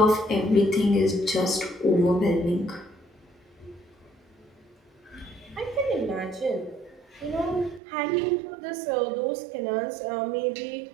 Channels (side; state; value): left; drops out; at 7.8 s